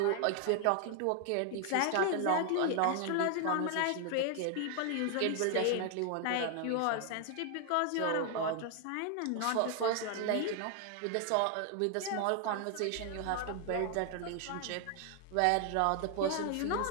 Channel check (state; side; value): different; both; correlation 0.00